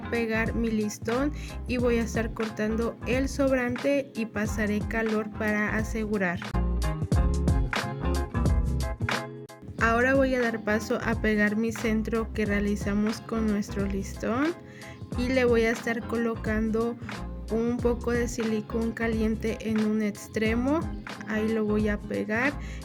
pegar mi listón, y voy a estar cortando el sobrante y pasaré calor para asegurar. Ahora voy a dar paso a pegar mi centro que realizamos con nuestro listón, y le voy a estar colocando un poco de silicón caliente en un extremo. Ahí lo voy a pegar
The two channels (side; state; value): both; identical; correlation 1.00